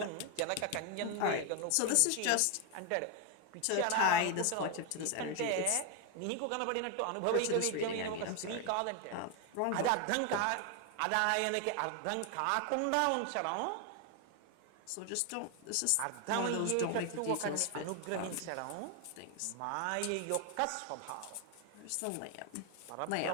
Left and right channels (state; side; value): different; both; correlation 0.01